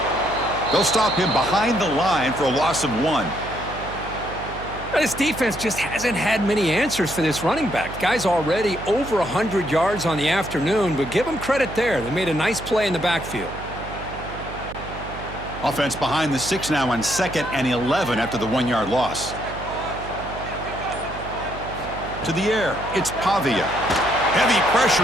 They'll stop him behind the line for a loss of 1. This defense just hasn't had many answers for this running back. Guy's already over 100 yards on the afternoon, but give him credit there. They made a nice play in the backfield. Offense behind the 6 now on 2nd and 11 after the 1-yard loss. To the air, it's Pavia. Heavy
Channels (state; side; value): noise; right; hum, 12 dB below the sound